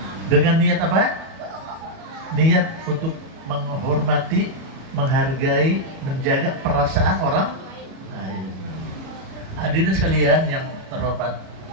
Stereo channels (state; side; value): late; left; 37 ms